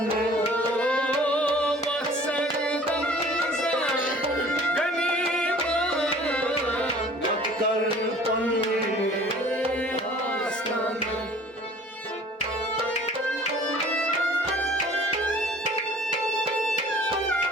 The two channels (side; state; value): both; normal; correlation 0.49